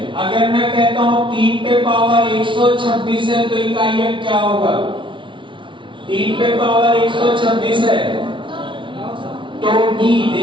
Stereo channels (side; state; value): left; late; 0.24 ms